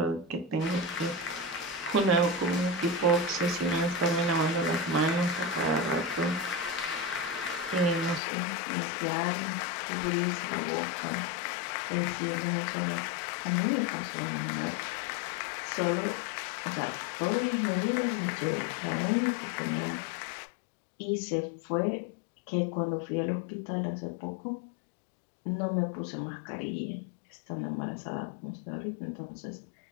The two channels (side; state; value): right; drops out; at 8.2 s